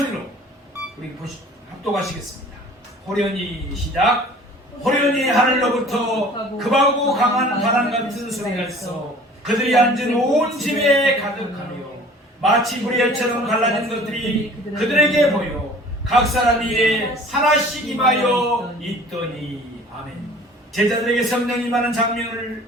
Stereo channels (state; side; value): normal; both; correlation 0.47